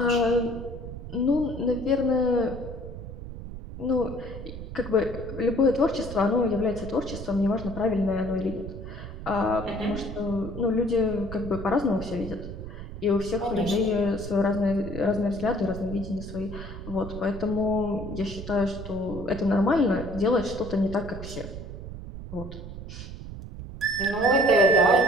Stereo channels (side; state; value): right; noise; rumble, 10 dB below the sound